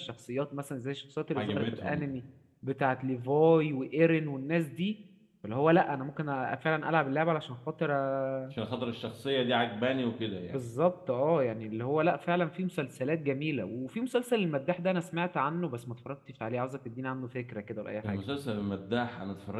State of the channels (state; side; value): identical; both; correlation 1.00